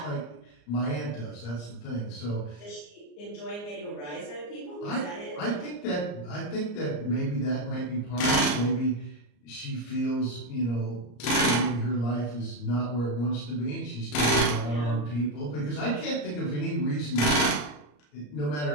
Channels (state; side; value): late; right; 34 ms